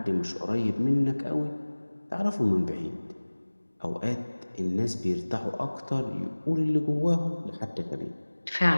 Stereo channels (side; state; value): both; inverted; correlation -1.00